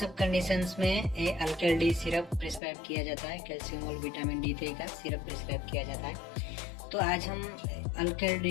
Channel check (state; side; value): drops out; right; at 2.6 s